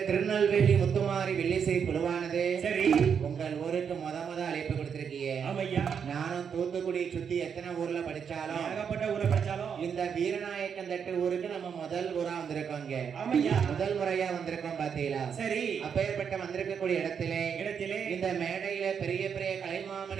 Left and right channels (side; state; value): left; quieter; 7.1 dB